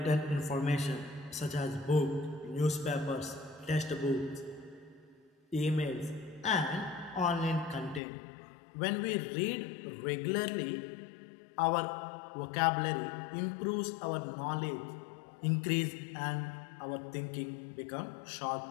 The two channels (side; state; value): right; drops out; at 8.0 s